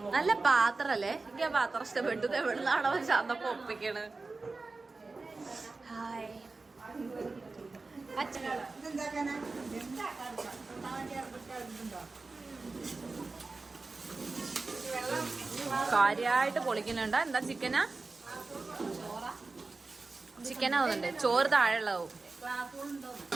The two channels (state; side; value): quieter; left; 3.7 dB